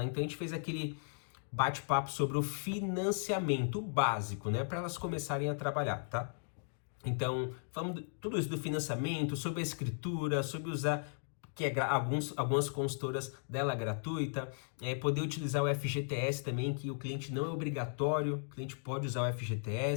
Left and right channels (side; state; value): right; silent; digital silence